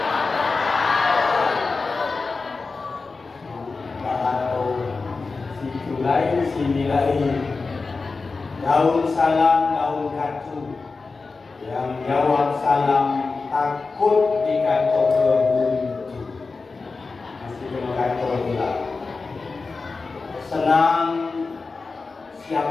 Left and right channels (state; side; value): quieter; right; 4.1 dB